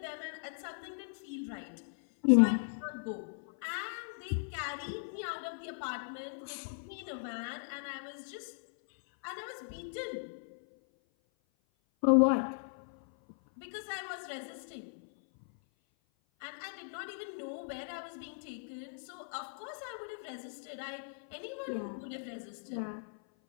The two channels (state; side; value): silent; right; 53 dB below the other